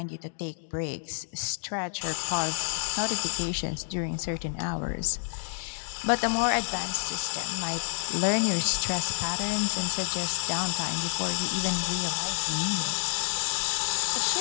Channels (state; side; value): silent; right; digital silence